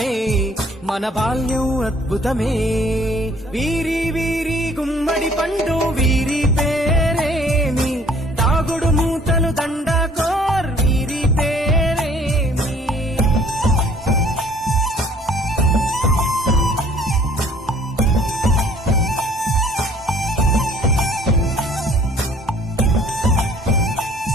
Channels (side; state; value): both; normal; correlation 0.57